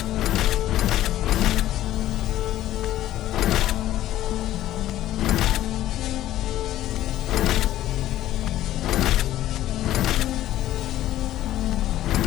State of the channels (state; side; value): quieter; right; 13.7 dB